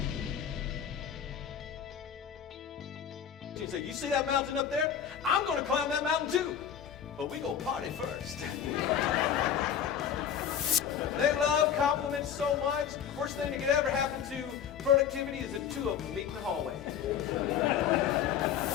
You say, you see that mountain up there? I'm going to climb that mountain too. But we go party first. They love compliments so much. Worst thing that could ever happen to productivity is that two of them meet in the hallway.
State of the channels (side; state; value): right; quieter; 8.6 dB